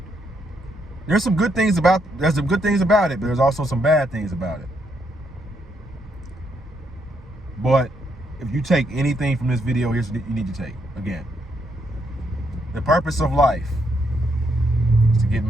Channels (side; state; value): both; normal; correlation 0.76